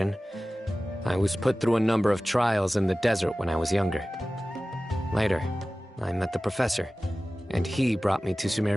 I was put through a number of trials in the desert when I was younger. Later, I met the professor, and he brought me to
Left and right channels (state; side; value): normal; both; correlation 0.97